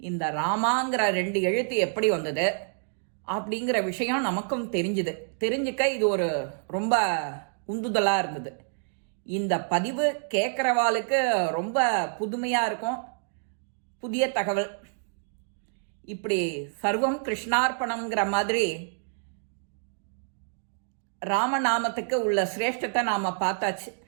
ராமாங்கிற 2 எழுத்து எப்படி வந்தது அப்படிங்கிற விஷயம் நமக்கும் தெரிஞ்சுக்க இது ஒரு ரொம்ப உந்துதலாக இருந்தது. இந்த பதிவு கேட்குறவாளுக்கு ரொம்ப புதுமையாக இருக்கும், புதிய தகவல். இப்படி சர்வம் கிருஷ்ணார்ப்பணம்ங்கிற மாதிரி ராமநாமத்துக்கு உள்ள சிரேஷ்டத்தை நாம் பார்த்தாச்சு.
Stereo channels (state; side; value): silent; left; digital silence